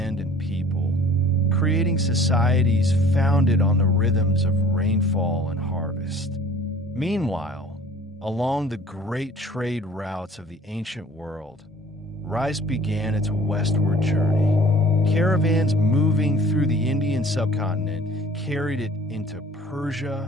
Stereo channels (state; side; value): normal; both; correlation 0.49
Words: and people, creating societies founded on the rhythms of rainfall and harvest. Meanwhile, along the great trade routes of the ancient world, rice began its westward journey. Caravans moving through the Indian subcontinent carried it into Persia